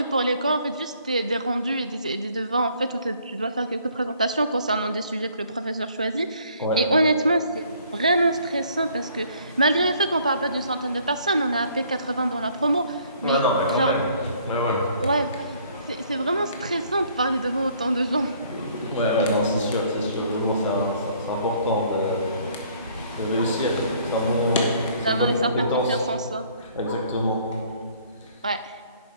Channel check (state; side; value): inverted; both; correlation -0.61